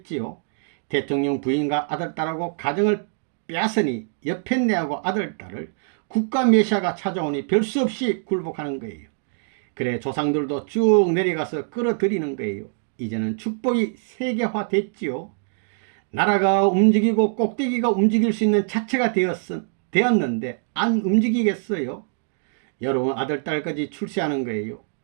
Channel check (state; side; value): silent; left; digital silence